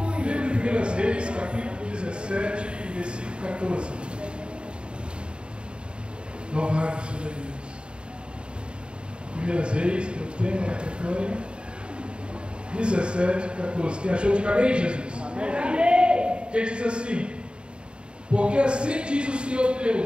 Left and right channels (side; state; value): left; late; 0.053 ms